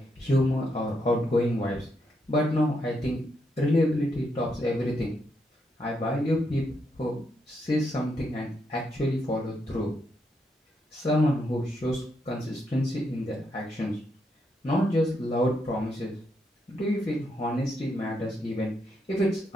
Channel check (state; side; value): normal; both; correlation 0.79